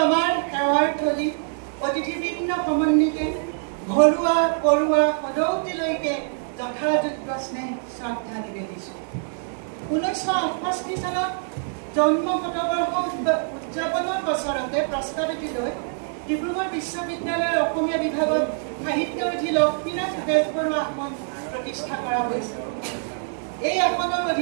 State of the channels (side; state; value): left; silent; 62 dB below the other